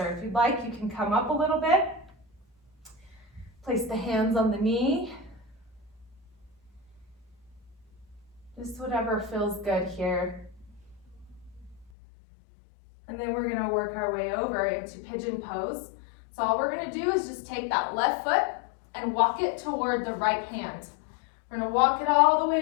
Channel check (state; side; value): drops out; right; at 11.9 s